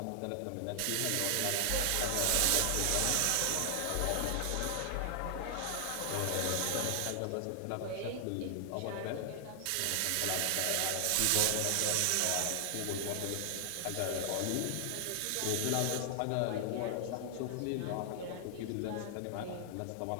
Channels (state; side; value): different; both; correlation 0.00